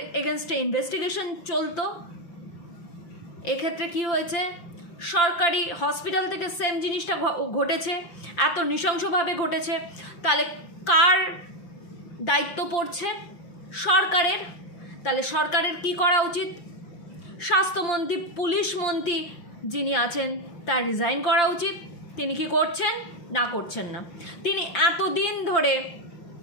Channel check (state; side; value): late; right; 5.8 ms